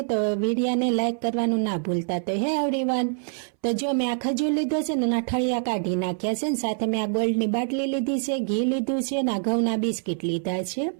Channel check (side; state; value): left; silent; 62 dB below the other